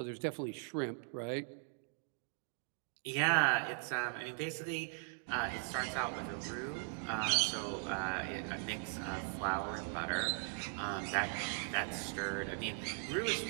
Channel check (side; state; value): left; silent; 52 dB below the other